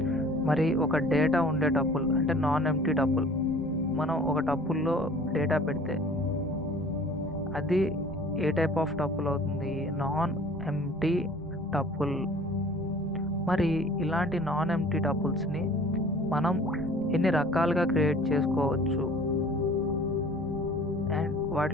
మరి ఒక డేటా ఉండే టపుల్ అంటే నాన్ ఎంటీ టపుల్, మనం ఒక టపుల్లో డేటా పెడితే అది ఏ టైప్ ఆఫ్ టపుల్ అవుతుంది? Non empty tuple. మరి ఇలాంటి నాన్ ఎంటీ టపుల్స్ని మనం ఎన్ని రకాలుగా క్రియేట్ చేసుకోవచ్చు అండ్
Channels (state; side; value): normal; both; correlation 0.48